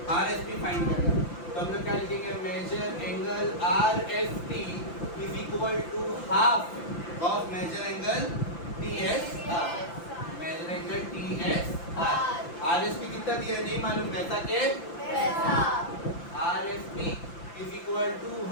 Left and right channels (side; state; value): right; late; 5.9 ms